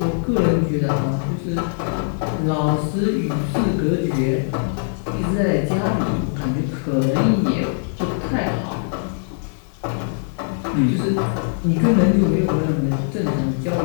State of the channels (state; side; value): silent; right; digital silence